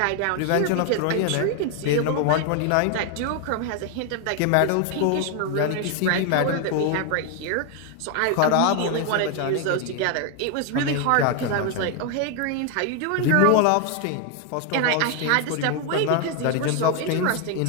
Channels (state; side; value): different; both; correlation 0.01